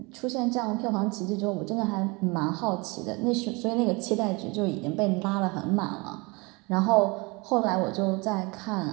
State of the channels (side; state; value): left; quieter; 27.2 dB